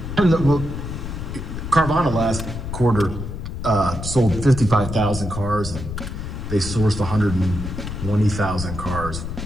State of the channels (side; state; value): left; noise; rumble, 6 dB below the sound